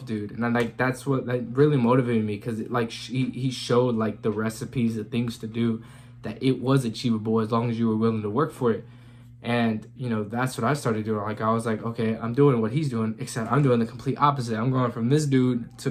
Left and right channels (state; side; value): identical; both; correlation 1.00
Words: dude, and that's what really motivated me, because he showed like the recipes, the things to do, that it was achievable as long as you were willing to work for it. And that's what I started doing. Like I was like, okay, I'm doing what he's doing, except I'm doing the complete opposite. I'm going from this dude to